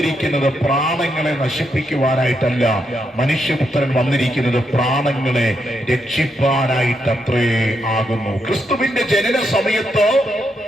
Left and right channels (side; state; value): both; normal; correlation 0.81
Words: പ്രാണങ്ങളെ നശിപ്പിക്കുവാനായിട്ടല്ല, മനുഷ്യപുത്രൻ വന്നിരിക്കുന്നത് പ്രാണങ്ങളെ രക്ഷിപ്പാനായിട്ടത്രേ ആകുന്നു. ക്രിസ്തുവിന്റെ ജനന സമയത്ത്